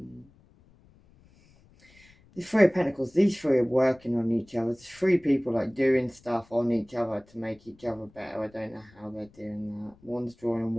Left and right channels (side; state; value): left; noise; rumble, 28 dB below the sound